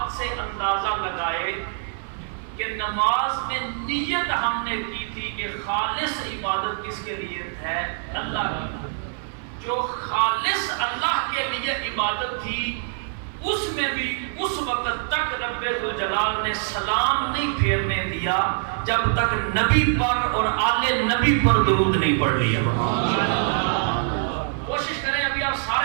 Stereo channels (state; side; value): silent; left; 58 dB below the other